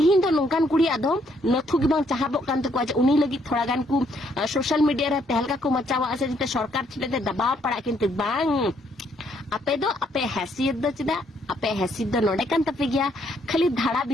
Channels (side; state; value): both; normal; correlation 0.70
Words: दो नोंकान कुड़ी आदो नथु गे बांग चाहबो कान तको आज उनी लगी थोड़ा गान को सोशल मीडिया रे तहलका को मचावा से जते सरकार छिले दबाव पड़ा किंतु बांग आपे दो आपे हैसियत दो चिदा आपे हैसियत दो नोडे कान तपे गया खाली धाड़ा